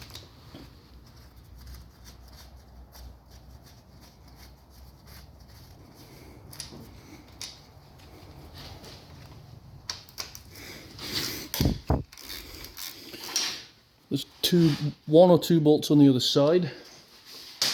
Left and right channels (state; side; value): identical; both; correlation 1.00